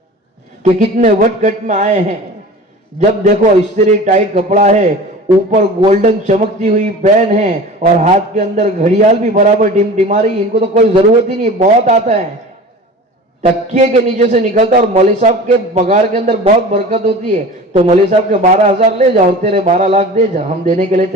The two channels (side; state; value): both; normal; correlation 0.37